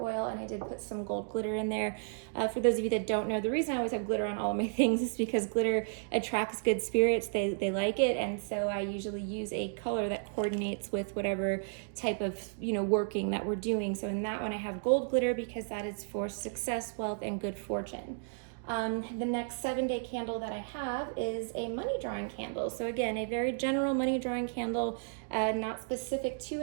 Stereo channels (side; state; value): left; silent; digital silence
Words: oil, and I did put some gold glitter in there. For those of you that don't know, the reason I always have glitter on all of my things is because glitter attracts good spirits. They like it, and so I usually use a color that coordinates with whatever type of, you know, working that we're doing. So in that one, I have gold glitter because that is for success, wealth, and good fortune. The next 7-day candle that I have is a money drawing candle. So again, a very general money drawing candle, not specific to